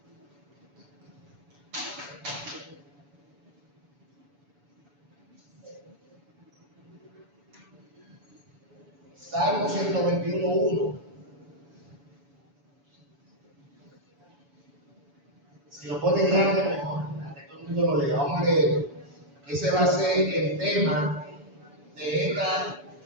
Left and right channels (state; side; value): late; left; 7.0 ms